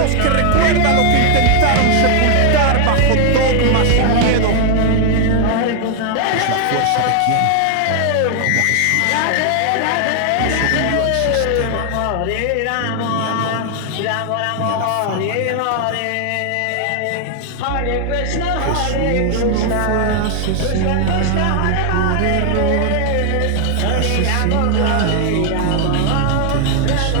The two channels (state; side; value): different; both; correlation 0.00